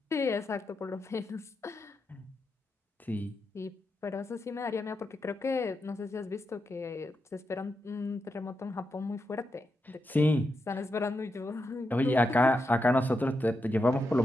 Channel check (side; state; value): both; normal; correlation 0.86